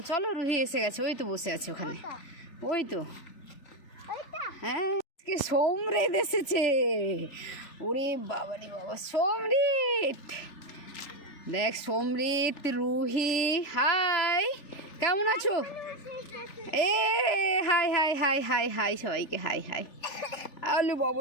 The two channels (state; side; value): late; right; 3.4 ms